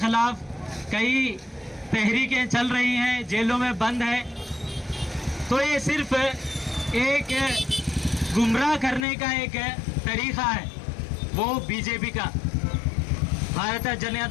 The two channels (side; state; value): right; drops out; at 9.1 s